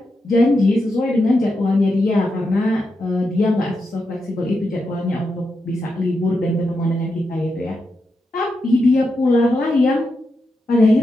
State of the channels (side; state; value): both; normal; correlation 0.86